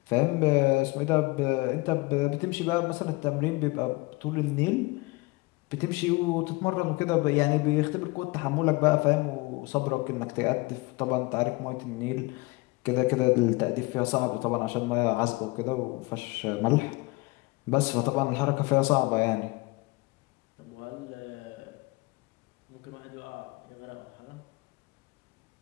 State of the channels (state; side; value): quieter; right; 24.1 dB